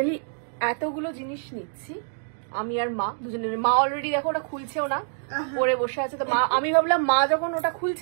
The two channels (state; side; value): silent; left; digital silence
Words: এতগুলো জিনিস নিচ্ছি, আমি আর মা দুজনের। মা অলরেডি দেখো ওটা খুলছেও না, পরে বসে আছে। তো মা, আমি ভাবলাম মা যখন ওটা